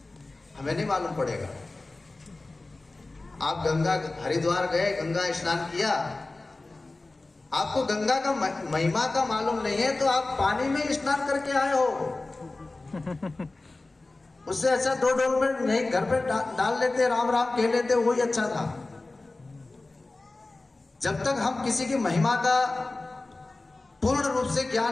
हमें नहीं मालूम पड़ेगा। आप गंगा हरिद्वार गए, गंगा स्नान किया, आपको गंगा का महिमा का मालूम नहीं है तो आप पानी में स्नान करके आए हो। उससे अच्छा 2 डोल में नहीं घर पे डाल लेते, राम राम कह लेते, वही अच्छा था। जब तक हम किसी की महिमा का पूर्ण रूप से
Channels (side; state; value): right; quieter; 3.2 dB